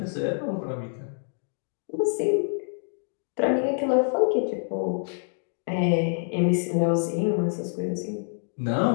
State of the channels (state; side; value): silent; right; digital silence